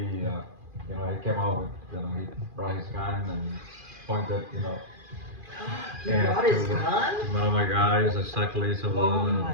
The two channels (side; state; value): left; late; 2.4 ms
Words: came out with, he brought his gun and pointed, He brought his gun? to one of my guys, exactly. So Oh my